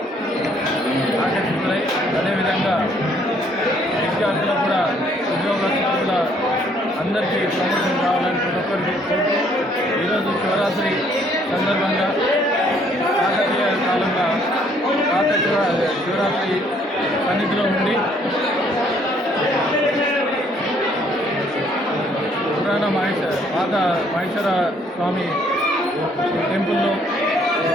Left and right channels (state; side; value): normal; both; correlation 0.64